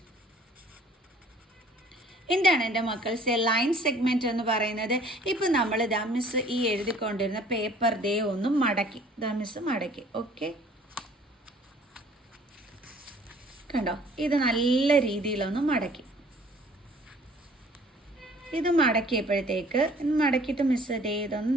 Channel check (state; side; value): normal; both; correlation 0.54